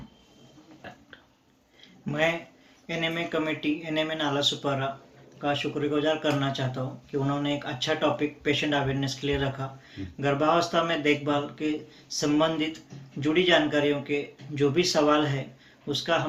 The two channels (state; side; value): identical; both; correlation 1.00